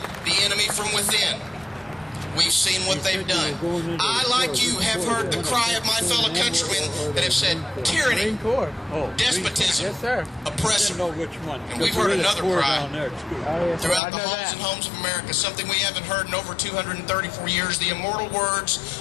the enemy from within. We've seen what they've done. I, like you, have heard the cry of my fellow countrymen that have said tyranny, despotism, oppression. And we've heard another cry throughout the halls and homes of America, something we haven't heard in over 234 years, the immortal words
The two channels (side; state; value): right; drops out; at 14.0 s